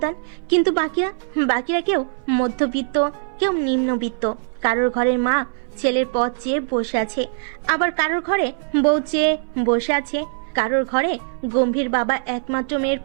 কিন্তু বাকিরা কেউ মধ্যবিত্ত, কেউ নিম্নবিত্ত। কারোর ঘরের মা ছেলের পথ চেয়ে বসে আছে, আবার কারোর ঘরে বউ চেয়ে বসে আছে, কারোর ঘরে গম্ভীর বাবা একমাত্র মেয়ের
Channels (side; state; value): left; silent; 60 dB below the other